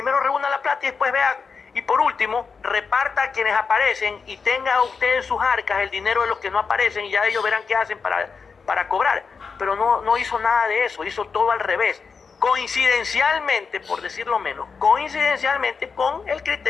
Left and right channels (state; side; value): quieter; right; 5.3 dB